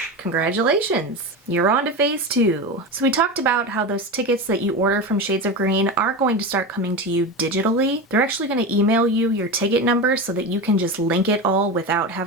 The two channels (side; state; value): both; normal; correlation 0.22